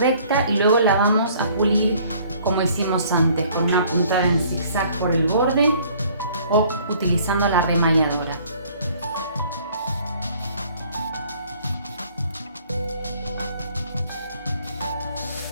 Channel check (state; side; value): inverted; both; correlation -0.57